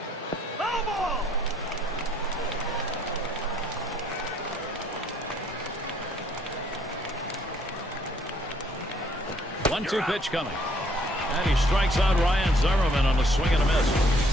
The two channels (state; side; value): normal; both; correlation 0.65